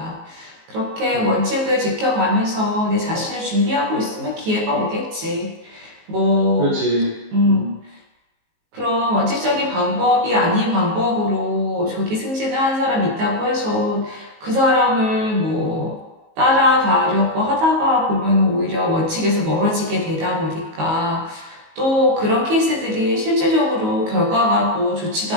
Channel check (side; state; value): left; late; 19 ms